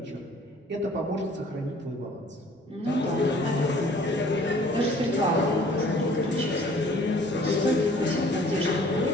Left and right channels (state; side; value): normal; both; correlation 0.54